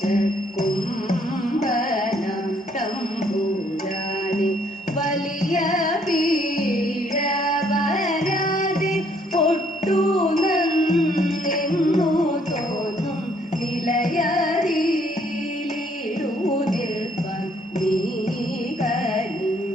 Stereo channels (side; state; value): both; normal; correlation 0.66